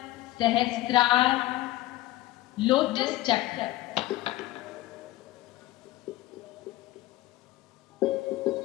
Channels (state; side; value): quieter; right; 16.8 dB